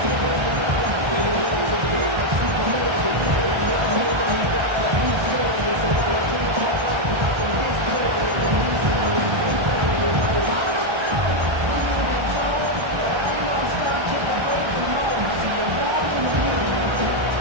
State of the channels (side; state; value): left; late; 1.3 ms